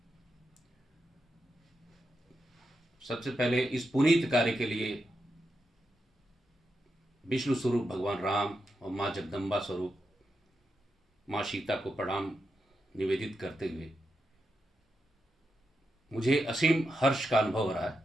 सबसे पहले इस पुनीत कार्य के लिए विष्णु स्वरूप भगवान राम और माँ जगदम्बा स्वरूप माँ सीता को प्रणाम निवेदित करते हुए मुझे असीम हर्ष का अनुभव हो रहा है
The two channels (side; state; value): both; normal; correlation 0.86